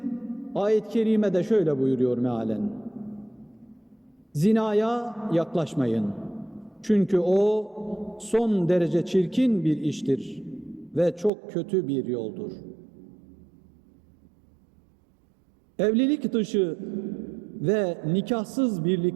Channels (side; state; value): left; drops out; at 11.3 s